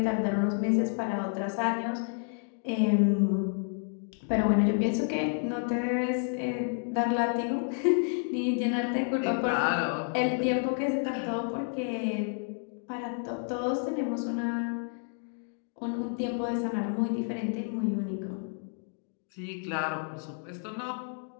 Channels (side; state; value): right; silent; 58 dB below the other